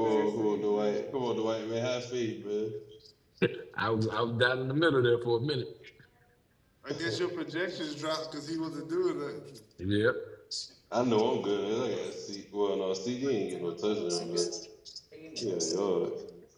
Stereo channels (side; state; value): both; identical; correlation 1.00